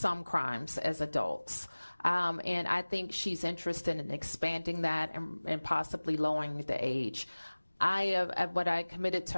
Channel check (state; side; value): inverted; both; correlation -1.00